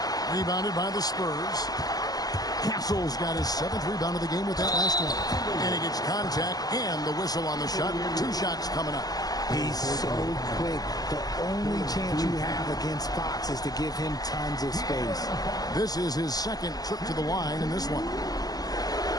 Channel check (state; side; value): late; right; 0.18 ms